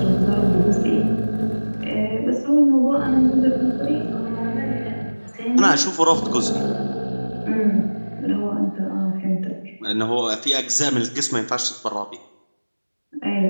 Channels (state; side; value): inverted; both; correlation -1.00